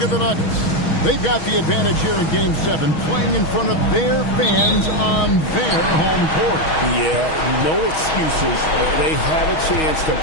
at the Nuggets. They've got the advantage here in Game 7, playing in front of their fans on their home court. Yeah, no excuses. They have a chance to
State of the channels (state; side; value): late; right; 6.3 ms